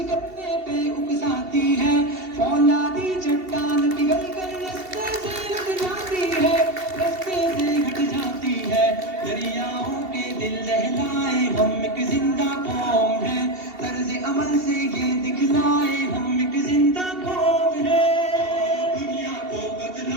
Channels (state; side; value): late; left; 2.7 ms